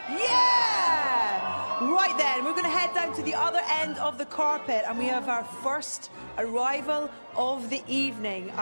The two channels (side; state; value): both; inverted; correlation -1.00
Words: Yeah! Right then, we're going to head down to the other end of the carpet and we have our first arrival of the evening.